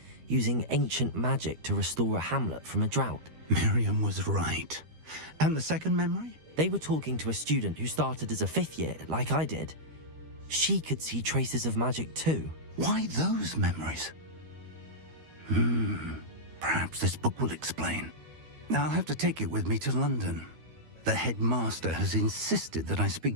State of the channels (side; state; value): left; late; 13 ms